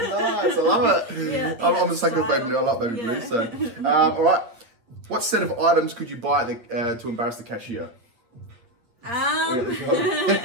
I love it. Yeah, I'm a sucker of baby blue. I like baby blue. So, all right. What set of items could you buy to embarrass the cashier? Here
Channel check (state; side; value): late; left; 8.7 ms